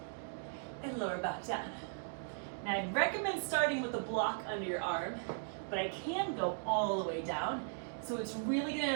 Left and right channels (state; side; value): silent; left; digital silence